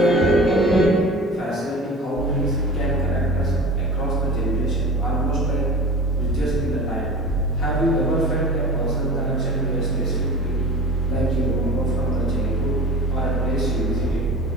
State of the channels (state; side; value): normal; both; correlation 0.36